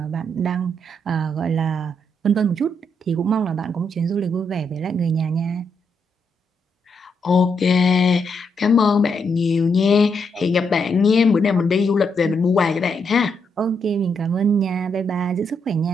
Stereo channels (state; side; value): normal; both; correlation 0.78